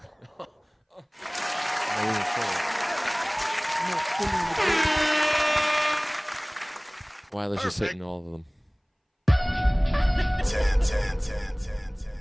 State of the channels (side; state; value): both; identical; correlation 1.00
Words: Weiler's just hitting all of them. 10.